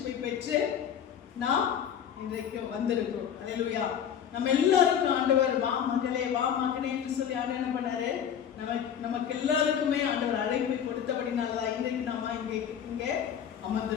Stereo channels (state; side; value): quieter; right; 8.8 dB